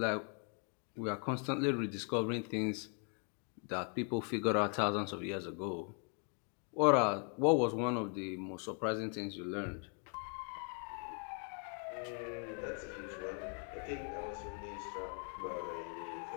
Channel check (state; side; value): quieter; right; 38.5 dB